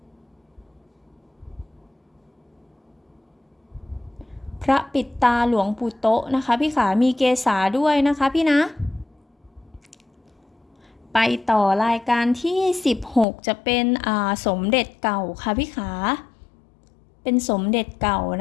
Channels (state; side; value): drops out; right; at 13.2 s